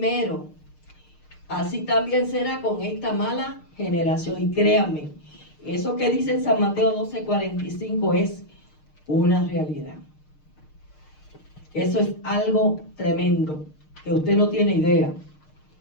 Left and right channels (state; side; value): late; right; 6.6 ms